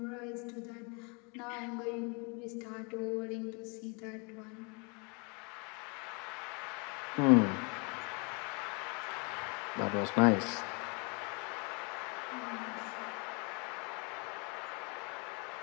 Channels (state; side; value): quieter; right; 32.8 dB